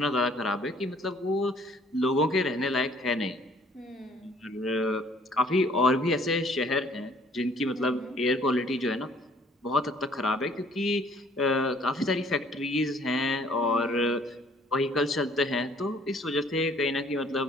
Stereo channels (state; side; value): normal; both; correlation 0.59